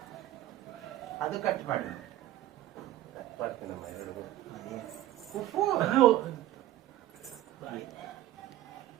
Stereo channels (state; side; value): quieter; left; 14.3 dB